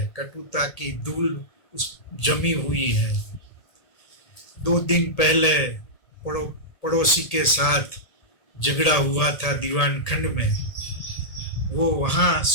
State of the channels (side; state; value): right; late; 1.8 ms